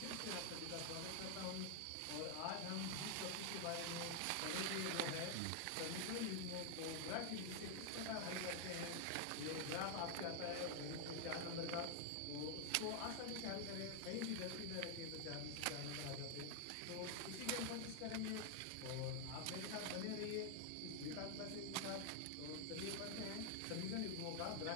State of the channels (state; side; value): different; both; correlation 0.00